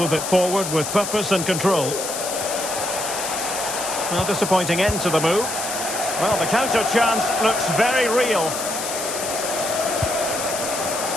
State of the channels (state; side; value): noise; left; hiss, 5 dB below the sound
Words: it forward with purpose and control. Well, disappointing end to the move. Well, the counter chance looks very real.